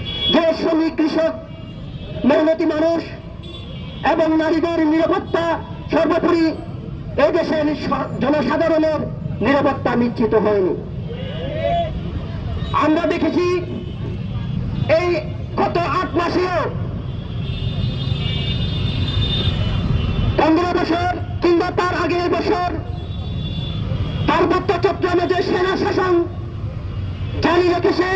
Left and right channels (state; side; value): identical; both; correlation 1.00